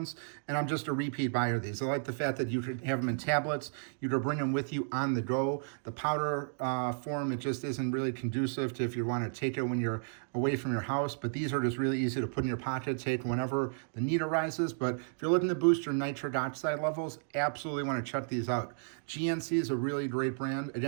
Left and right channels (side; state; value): left; silent; digital silence